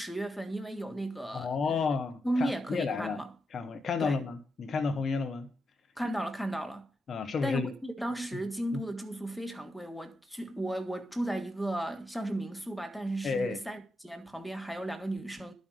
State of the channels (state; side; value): normal; both; correlation 0.85